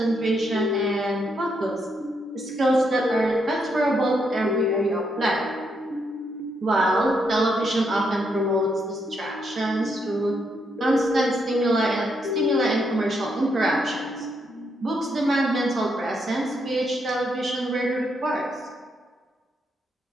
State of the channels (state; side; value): normal; both; correlation 0.78